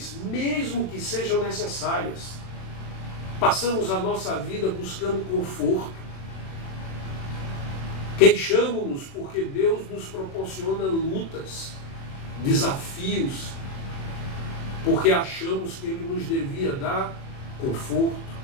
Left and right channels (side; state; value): right; late; 39 ms